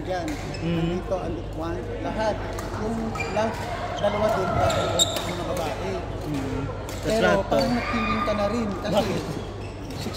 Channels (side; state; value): both; identical; correlation 1.00